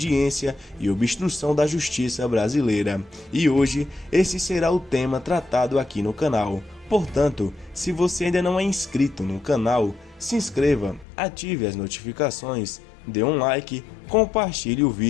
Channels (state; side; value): drops out; right; at 11.1 s